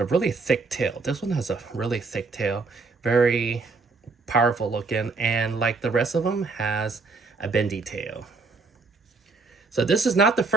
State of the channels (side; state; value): left; quieter; 4.1 dB